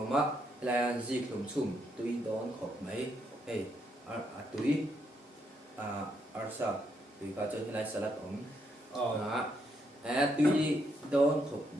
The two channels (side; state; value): both; normal; correlation 0.76